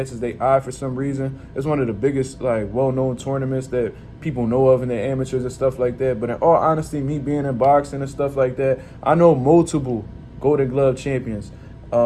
their eye for some reason. It's one of the biggest, well-known tournaments that people know of in the amateurs and stuff like that. But in all honesty, me being in boxing and stuff like that, I know multiple Golden Glove champions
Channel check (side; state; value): both; identical; correlation 1.00